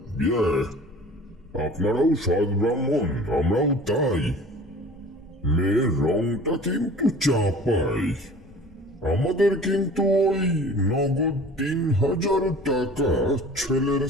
আপনারাও সৎ ব্রাহ্মণ, আমরাও তাই। মেয়ের রংটা কিন্তু চাপাই। আমাদের কিন্তু ওই নগদ 3000 টাকা, ছেলের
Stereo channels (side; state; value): both; normal; correlation 0.44